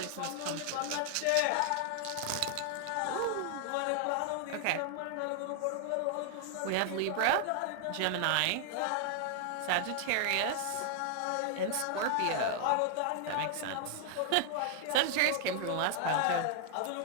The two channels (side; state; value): both; different; correlation 0.00